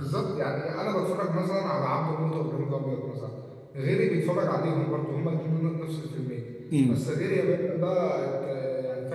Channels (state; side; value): identical; both; correlation 1.00